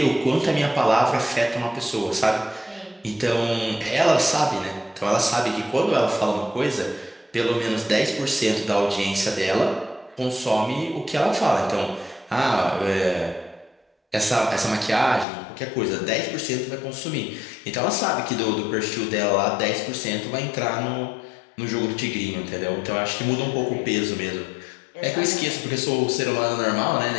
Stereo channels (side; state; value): right; drops out; at 15.2 s